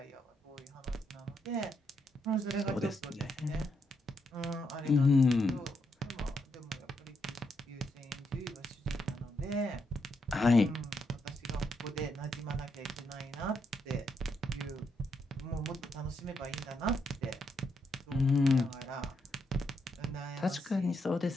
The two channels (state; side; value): normal; both; correlation 0.79